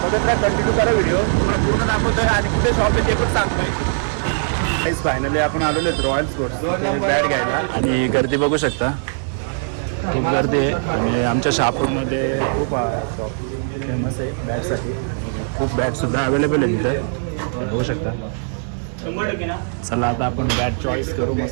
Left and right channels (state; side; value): silent; left; 65 dB below the other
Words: बघत राहा, कंटिन्यू करा व्हिडिओ. तुम्हाला पूर्ण दाखवतोय आणि कुठे शॉप आहे ते पण सांगतोय. फायनली आपण आलेलो आहेत रॉयल स्पोर्ट्स बॅट घ्यायला. आणि गर्दी बघू शकता, खूप गर्दी आहे. आणि आमच्या शहापूरमध्ये खूप शॉप फेमस आहे बॅटसाठी. खूप बॅटसुद्धा अवेलेबल आहे तिथं, बघू शकता. चला आता आपण बॅट चॉईस करू